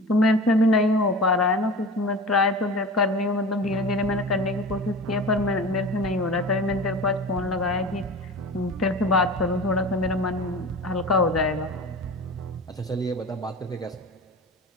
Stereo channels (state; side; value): normal; both; correlation 0.34